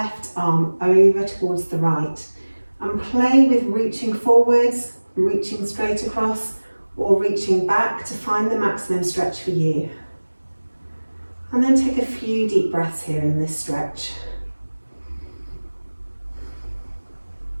arm over towards the right, and play with reaching forwards, reaching straight across, or reaching back to find the maximum stretch for you. And then take a few deep breaths here in this stretch.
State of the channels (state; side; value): inverted; both; correlation -1.00